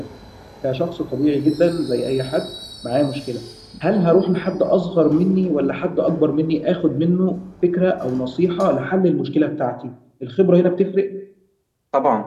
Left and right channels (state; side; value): identical; both; correlation 1.00